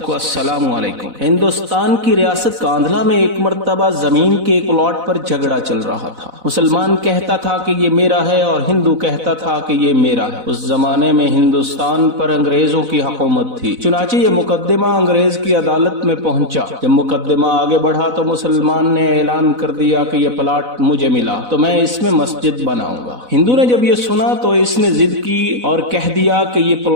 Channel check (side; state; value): left; late; 4.0 ms